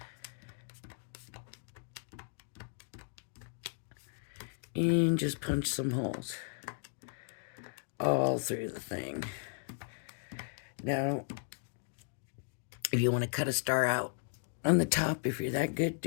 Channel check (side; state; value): right; silent; digital silence